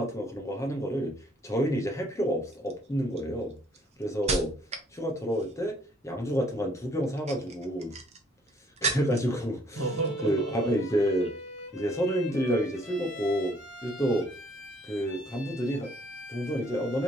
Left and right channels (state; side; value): normal; both; correlation 0.63